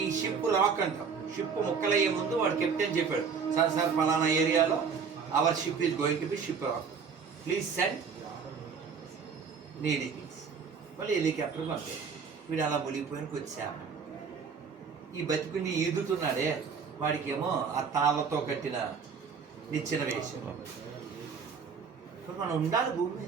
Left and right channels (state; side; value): quieter; left; 5.9 dB